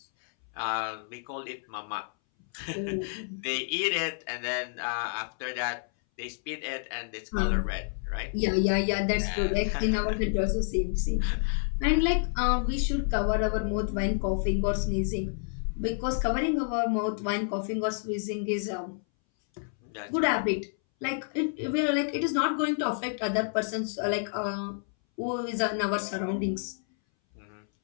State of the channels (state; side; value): silent; right; 58 dB below the other